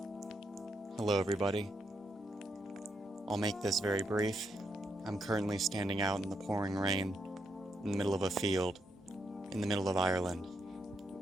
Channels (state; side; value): normal; both; correlation 0.80